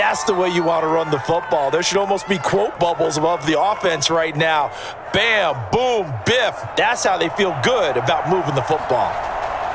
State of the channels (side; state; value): both; identical; correlation 1.00